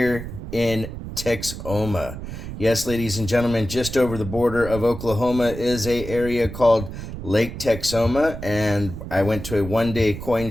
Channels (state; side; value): noise; right; rumble, 9 dB below the sound